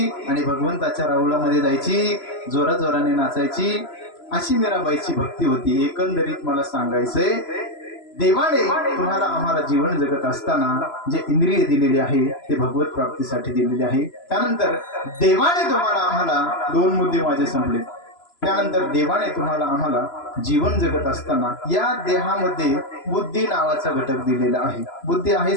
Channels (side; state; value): right; late; 3.0 ms